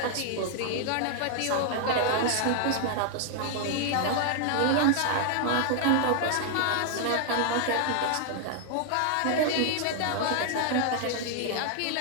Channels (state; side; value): different; both; correlation 0.00